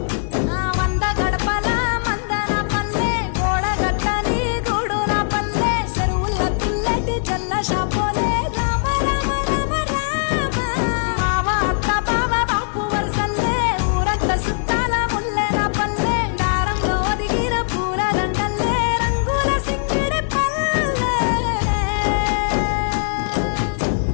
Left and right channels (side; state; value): right; silent; 58 dB below the other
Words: వంద గడపల మందన పల్లె గోడ గట్టని గూడు నా పల్లె చెరువుల తుల్లటి జల్ల షాపోలే